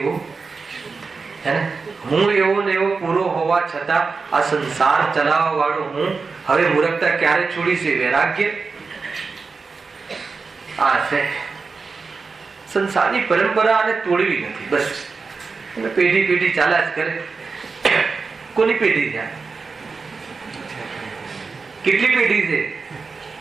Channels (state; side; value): quieter; left; 4.6 dB